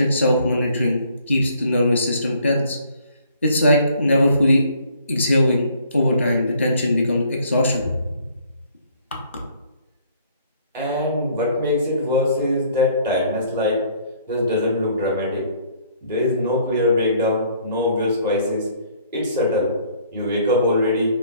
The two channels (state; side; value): inverted; both; correlation -0.61